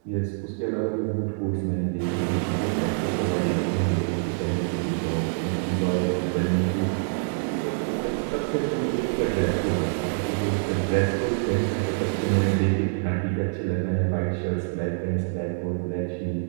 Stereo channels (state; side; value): silent; left; digital silence